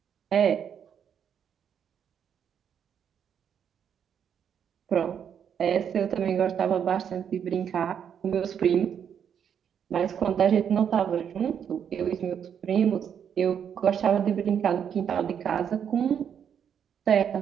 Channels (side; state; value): left; quieter; 8.2 dB